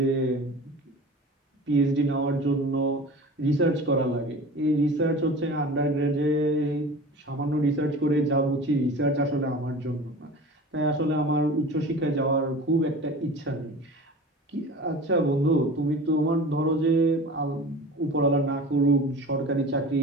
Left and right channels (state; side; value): normal; both; correlation 0.37